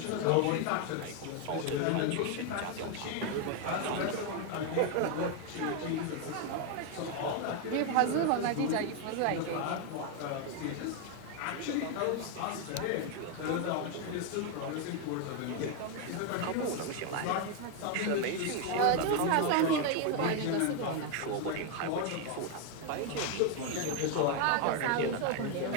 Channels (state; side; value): different; both; correlation 0.01